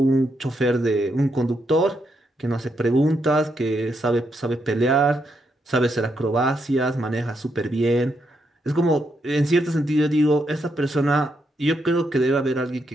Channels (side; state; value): both; normal; correlation 0.80